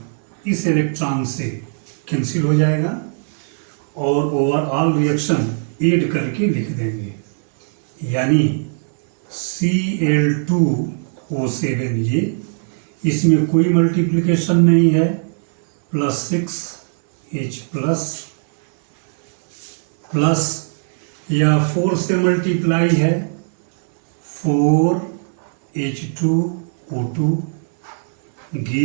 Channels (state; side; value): silent; left; 59 dB below the other